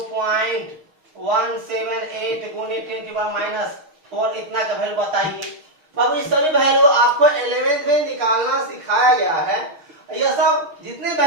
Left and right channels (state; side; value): late; left; 6.4 ms